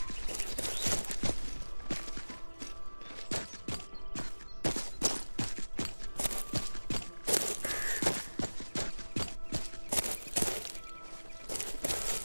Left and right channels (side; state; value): both; inverted; correlation -1.00